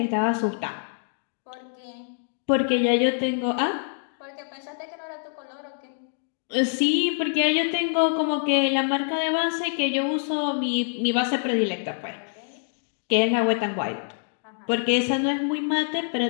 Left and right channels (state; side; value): silent; right; digital silence